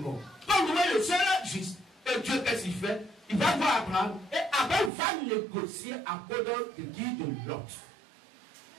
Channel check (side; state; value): left; drops out; at 4.9 s